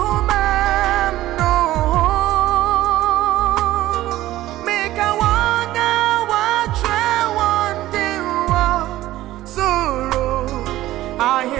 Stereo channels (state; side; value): quieter; left; 15.4 dB